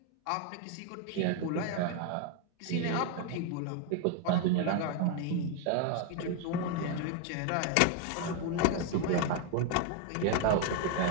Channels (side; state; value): both; different; correlation 0.01